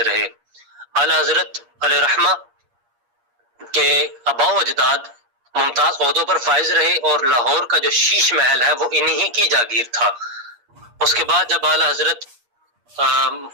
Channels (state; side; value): late; left; 8.4 ms